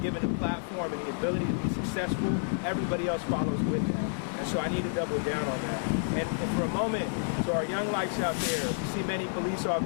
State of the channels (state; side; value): silent; right; 58 dB below the other